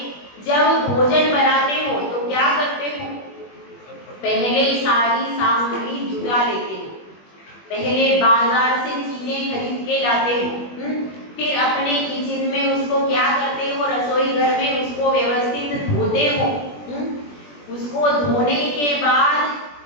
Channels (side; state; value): right; late; 21 ms